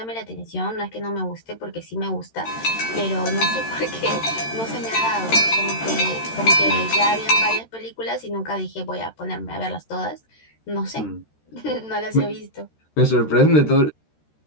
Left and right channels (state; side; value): late; right; 13 ms